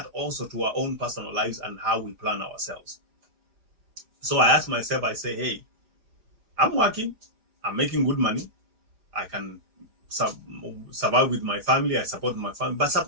also to our own personal lives and how we plan ourselves. So I ask myself, I say, hey, I'm working, I'm making good money, I can survive with my family, I support my family. But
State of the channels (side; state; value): left; late; 4.9 ms